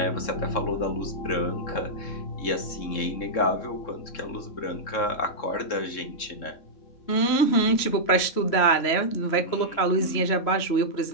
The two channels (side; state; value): right; late; 3.1 ms